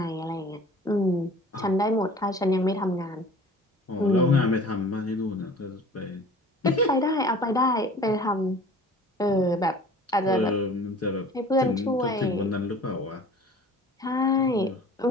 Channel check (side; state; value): both; normal; correlation 0.45